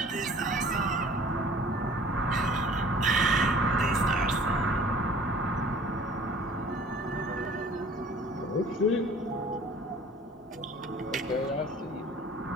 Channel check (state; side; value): normal; both; correlation 0.49